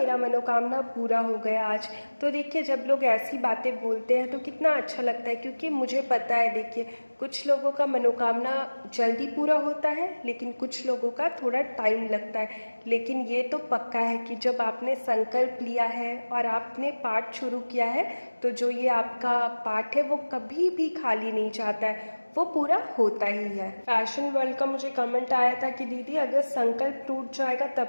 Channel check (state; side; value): inverted; both; correlation -1.00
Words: मनोकामना पूरा हो गया आज। तो देखिए, जब लोग ऐसी बातें बोलते हैं तो कितना अच्छा लगता है, क्योंकि मुझे पता है, देखिए कुछ लोगों का मनोकामना जल्दी पूरा होता है लेकिन कुछ लोगों का थोड़ा टाइम लगता है। लेकिन ये तो पक्का है कि जब आपने संकल्प लिया है और आपने पाठ शुरू किया है तो जो ये आपका पाठ है वो कभी भी खाली नहीं जाता है, वो पूरा होता ही है। फैशन वर्ल्ड का मुझे कमेंट आया था कि दीदी अगर संकल्प टूट जाएगा